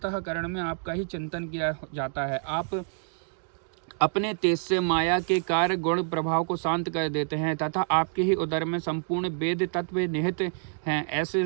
में आपका ही चिंतन किया जाता है। आप अपने तेज से माया के कार्य गुण प्रभाव को शांत कर देते हैं तथा आपके ही उदर में संपूर्ण वेद तत्व निहित हैं। ऐसे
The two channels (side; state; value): left; silent; 60 dB below the other